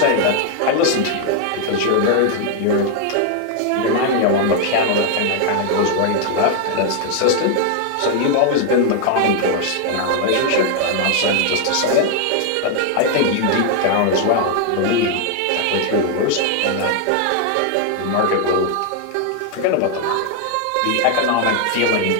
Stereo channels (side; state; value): both; different; correlation 0.00